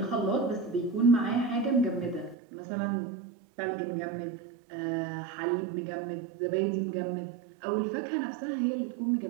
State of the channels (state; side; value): drops out; left; at 2.4 s